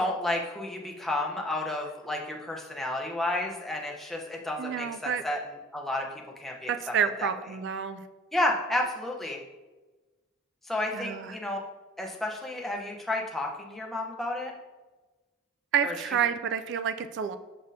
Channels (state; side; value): normal; both; correlation 0.46